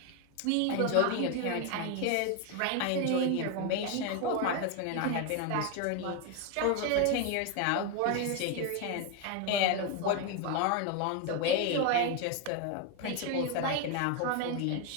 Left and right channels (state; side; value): different; both; correlation 0.01